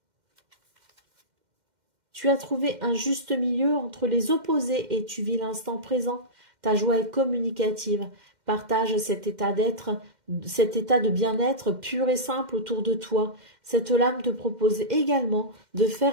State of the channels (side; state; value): left; late; 2.1 ms